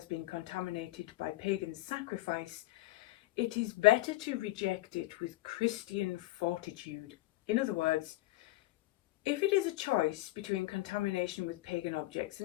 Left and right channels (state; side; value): quieter; right; 18.1 dB